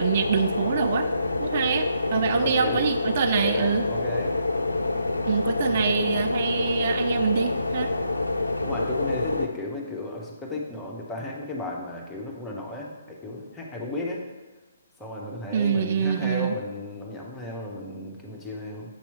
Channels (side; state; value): both; inverted; correlation -0.73